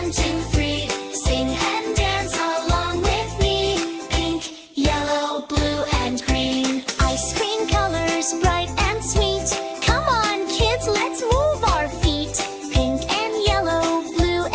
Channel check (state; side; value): identical; both; correlation 1.00